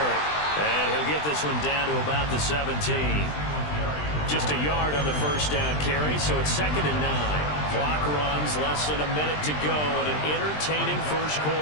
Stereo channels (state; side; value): late; right; 20 ms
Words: And he'll get this one down to about the 17. Just a yard on the first down carry, so it's 2nd and 9. Clock runs, less than a minute to go in an entertaining first